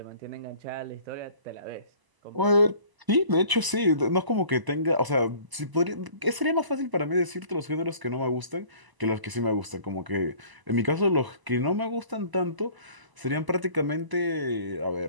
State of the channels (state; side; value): late; left; 1.0 ms